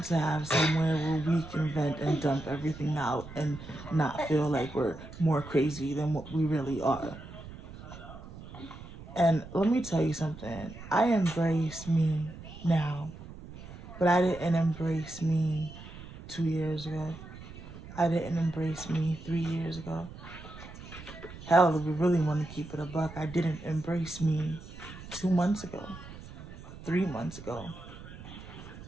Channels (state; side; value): noise; right; rumble, 15 dB below the sound